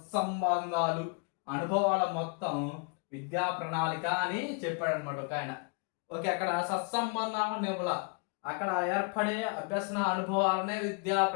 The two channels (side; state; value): right; quieter; 37.1 dB